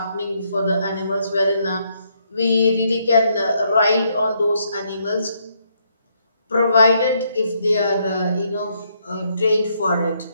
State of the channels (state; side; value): inverted; both; correlation -0.74